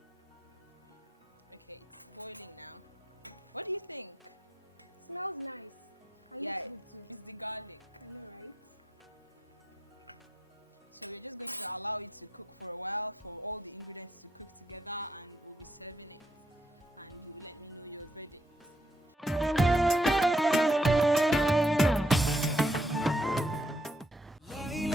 Okay, it's boiling now. What do you think? Smells nice. And yeah, looks good too. It's the garlic. I know, right? So we're just going to allow it to cook for a while, for all the ingredients to cook together, and we'll be serving it. And you let me know your verdict.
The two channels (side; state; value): both; normal; correlation 0.74